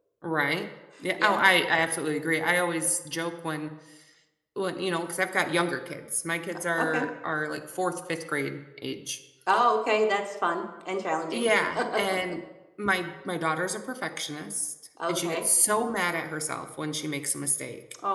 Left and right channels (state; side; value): identical; both; correlation 1.00